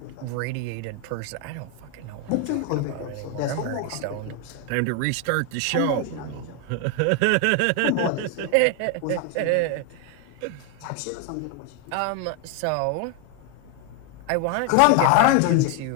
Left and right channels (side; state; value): both; different; correlation 0.01